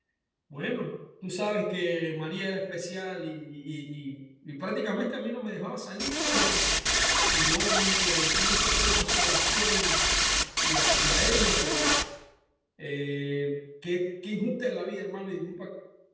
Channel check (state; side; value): identical; both; correlation 1.00